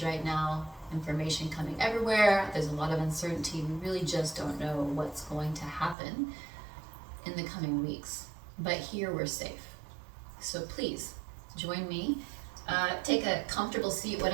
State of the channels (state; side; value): drops out; left; at 6.0 s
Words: right now. Information coming everywhere. There's a lot of uncertainty. We really just don't know what's going to happen in the coming weeks. But here we're safe. So please join me. Take a comfortable seat,